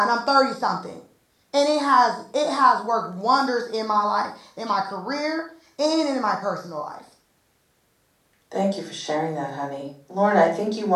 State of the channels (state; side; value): identical; both; correlation 1.00